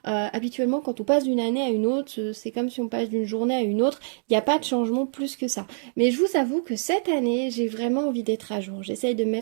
Habituellement, quand on passe d'une année à une autre, c'est comme si on passe d'une journée à une autre. Il n'y a pas de changement plus que ça. Mais je vous avoue que cette année, j'ai vraiment envie d'être à jour. J'essaye de me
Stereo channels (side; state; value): left; silent; digital silence